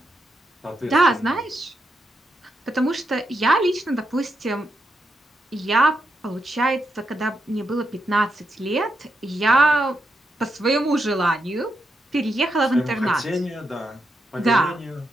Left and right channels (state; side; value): normal; both; correlation 0.83